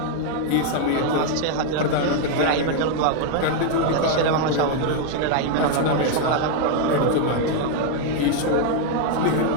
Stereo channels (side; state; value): both; different; correlation 0.00